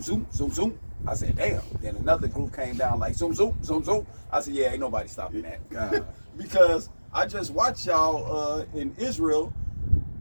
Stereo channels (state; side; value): inverted; both; correlation -1.00